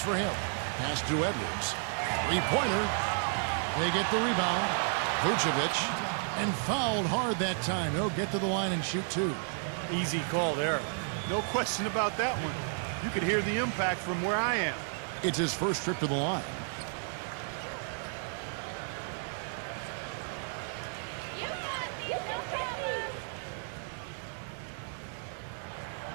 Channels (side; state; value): left; silent; 56 dB below the other